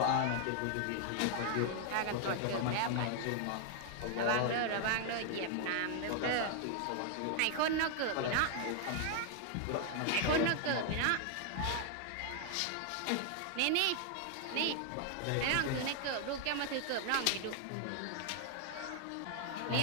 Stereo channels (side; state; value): both; different; correlation 0.00